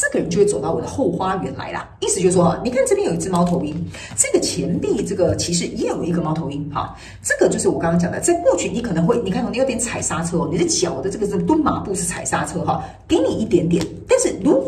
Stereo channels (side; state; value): both; identical; correlation 1.00